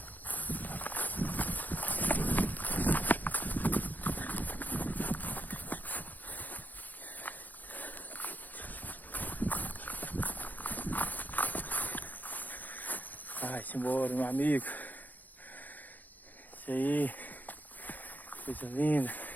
Vai-se embora, meu amigo. Isso aí, coisa linda.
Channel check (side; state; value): right; late; 0.083 ms